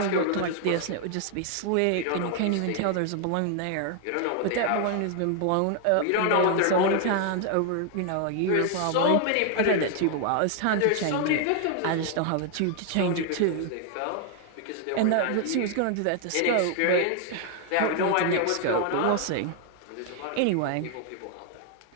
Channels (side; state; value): both; different; correlation 0.00